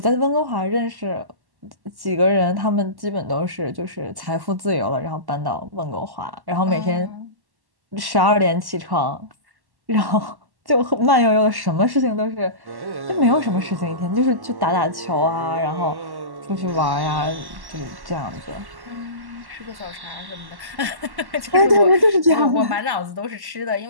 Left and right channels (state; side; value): late; left; 1.1 ms